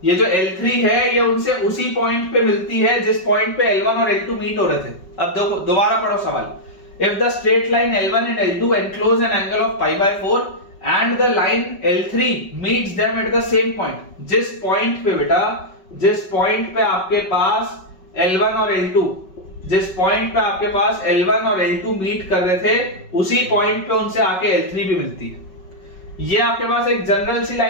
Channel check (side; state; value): right; late; 5.3 ms